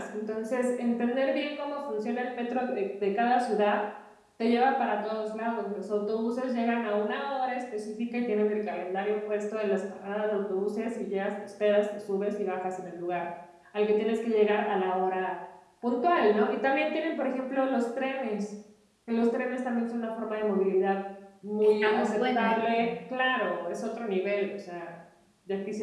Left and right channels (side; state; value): both; identical; correlation 1.00